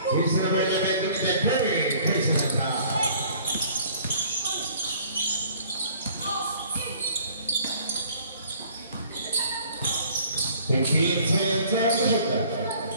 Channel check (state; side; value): inverted; both; correlation -0.55